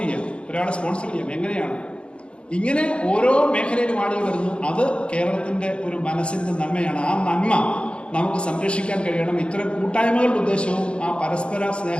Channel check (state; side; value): late; right; 0.057 ms